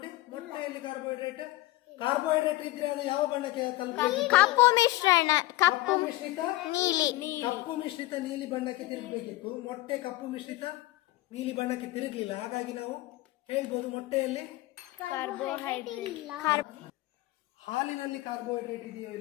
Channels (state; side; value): quieter; right; 18.5 dB